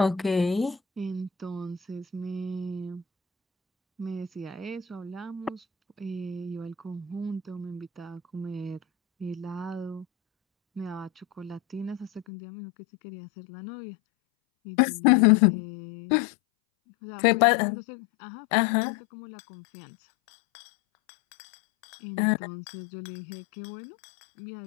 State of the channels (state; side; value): drops out; right; at 12.2 s